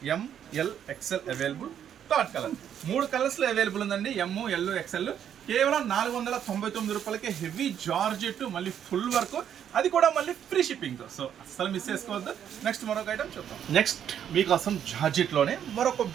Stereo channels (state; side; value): quieter; left; 9.3 dB